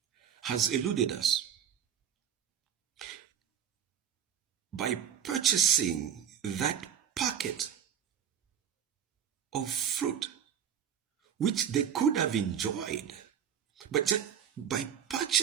has eluded us. By purchasing that packet of fruit, which they could have enjoyed, but just by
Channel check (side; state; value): left; quieter; 8.7 dB